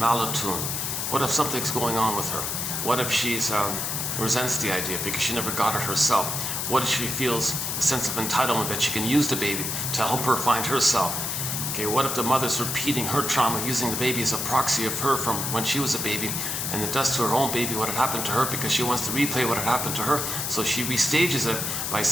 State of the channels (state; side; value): noise; left; hiss, 2 dB below the sound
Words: What if something's going on with her? What if she's resents the idea because she never got it herself? What if she feels a sense of entitlement that she can use the baby to help her find herself? Okay, what if the mother's repeating her trauma, using the baby as a proxy of her from when she was a baby, and it does to her own baby what had happened to her because she wants to replay what had happened to her, so she restages it by